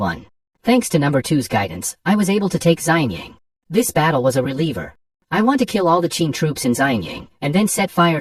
Thanks to number 2's guidance, I was able to take Xianyang. This battle was a reliever. I want to kill all the Qin troops in Xianyang, and then set fire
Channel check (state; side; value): identical; both; correlation 1.00